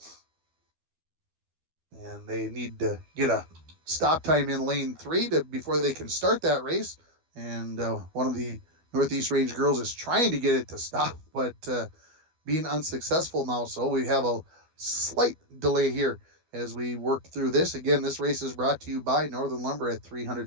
And they need to get a stop time in lane 3 before they can start that race. And one of the Northeast Range girls is trying to get it to stop, but being unsuccessful now. So we have a slight delay here as we work through this. Again, this race is brought to you by Northern Lumber at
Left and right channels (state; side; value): late; left; 12 ms